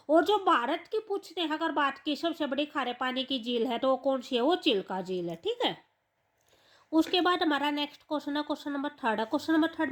और जो भारत की पूछते हैं अगर बात की सबसे बड़ी खारे पानी की झील है तो वो कौन सी है, वो चिल्का झील है। ठीक है, उसके बाद हमारा नेक्स्ट क्वेश्चन है क्वेश्चन नंबर थर्ड है। क्वेश्चन नंबर थर्ड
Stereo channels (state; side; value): identical; both; correlation 1.00